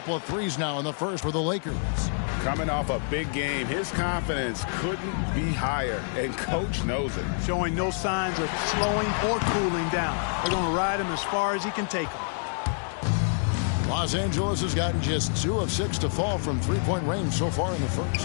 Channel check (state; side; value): silent; right; 60 dB below the other